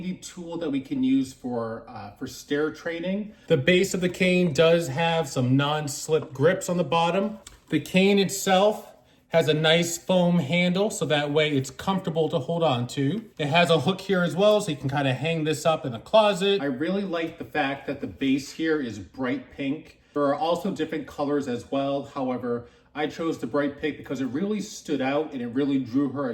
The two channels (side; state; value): both; identical; correlation 1.00